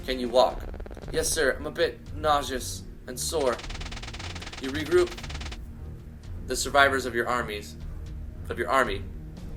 Can you walk? Yes, sir, I'm a bit nauseous and sore. You regroup. The survivors of your army.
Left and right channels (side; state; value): both; identical; correlation 1.00